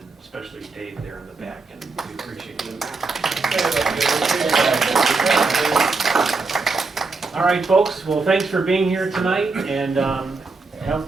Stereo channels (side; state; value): left; quieter; 4.0 dB